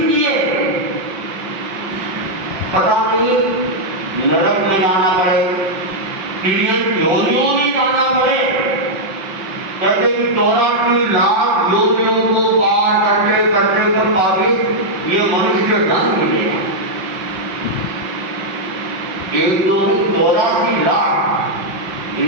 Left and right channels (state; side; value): late; left; 5.6 ms